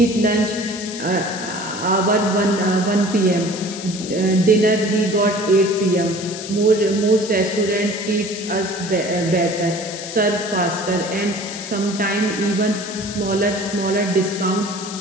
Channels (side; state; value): left; noise; hiss, 10 dB below the sound